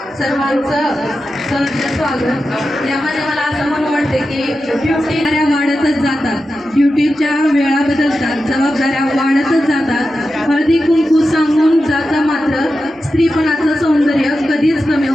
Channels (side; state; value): both; normal; correlation 0.91